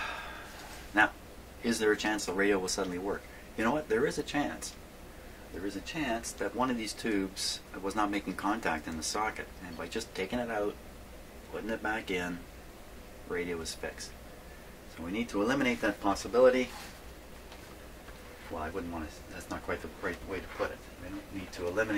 Now, is there a chance the radio will suddenly work? You know what? There is a chance. There is a chance that one of these tubes was not making contact in the socket, and by just taking it out, putting it back in, radio is fixed. So we need to eliminate that possibility. Well, I wouldn't want to, that's not quite the right way to put it. We don't need to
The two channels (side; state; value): both; identical; correlation 1.00